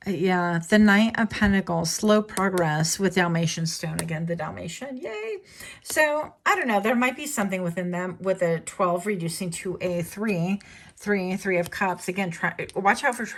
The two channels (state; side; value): identical; both; correlation 1.00